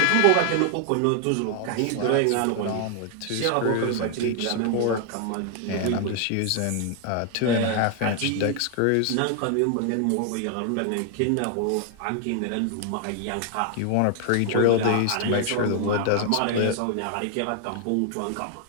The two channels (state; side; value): different; both; correlation 0.00